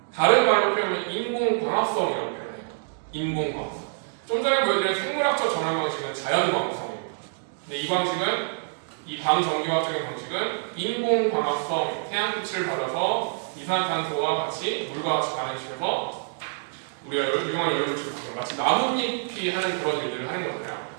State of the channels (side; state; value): left; silent; digital silence